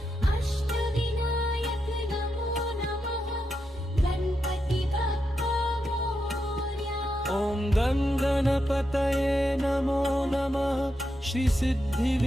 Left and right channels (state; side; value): normal; both; correlation 0.85